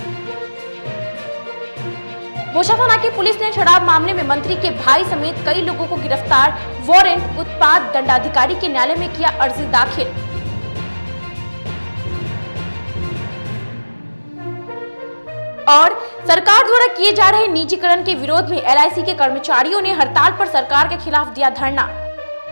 बोचा थाना की पुलिस ने शराब मामले में मंत्री के भाई समेत कई लोगों को गिरफ्तार, वारंट उत्पाद दंडाधिकारी के न्यायालय में किया अर्जी दाखिल। और सरकार द्वारा किए जा रहे निजीकरण के विरोध में एलआईसी के कर्मचारियों ने हड़ताल पर सरकार के खिलाफ दिया धरना।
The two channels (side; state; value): both; inverted; correlation -1.00